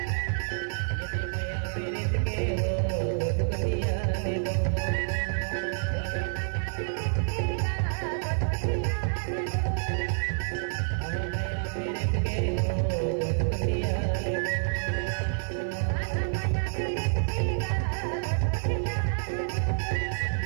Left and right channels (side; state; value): left; silent; 57 dB below the other